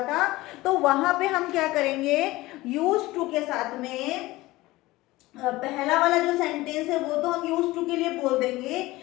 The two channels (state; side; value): quieter; right; 19.1 dB